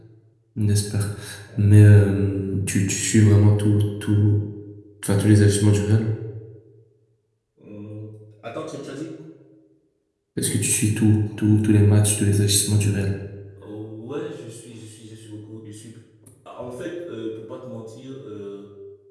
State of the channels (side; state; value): both; identical; correlation 1.00